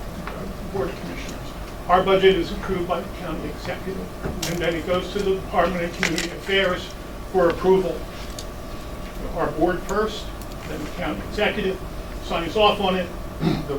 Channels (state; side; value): identical; both; correlation 1.00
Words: Commissioners. Our budget is approved by the county executive, and then it goes to the Department of Community Affairs for approval. Our board first, then the county executive signs off on it. The